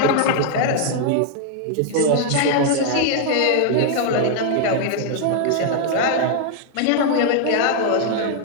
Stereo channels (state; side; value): different; both; correlation 0.00